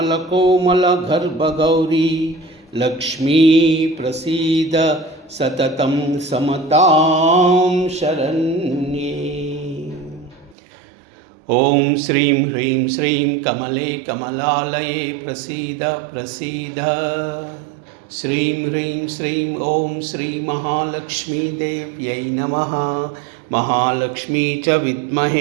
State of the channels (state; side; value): drops out; left; at 10.6 s